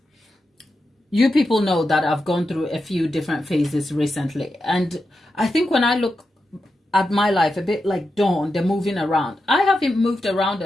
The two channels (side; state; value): both; normal; correlation 0.88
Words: you people know that I've gone through a few different phases recently. And I think when I look at my life, a bit like Dawn, the moving around, I haven't moved around